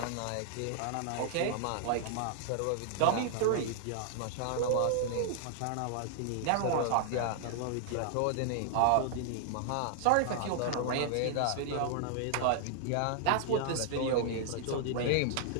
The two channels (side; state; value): both; different; correlation -0.01